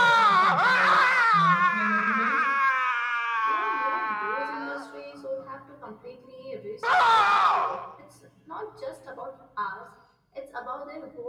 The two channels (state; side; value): identical; both; correlation 1.00